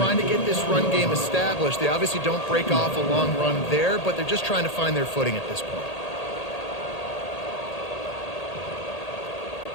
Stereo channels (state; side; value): late; right; 1.8 ms